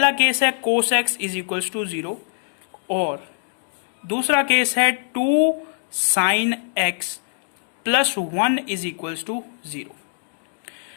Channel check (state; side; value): silent; right; 63 dB below the other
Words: केस है cos x is equal to 0, और दूसरा केस है 2 sin x plus 1 is equal to 0।